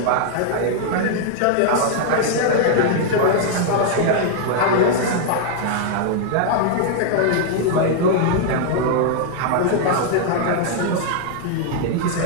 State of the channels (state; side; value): different; both; correlation -0.01